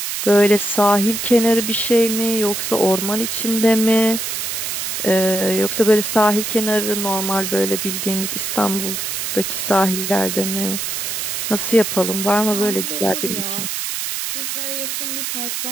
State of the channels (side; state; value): right; noise; hiss, 3 dB below the sound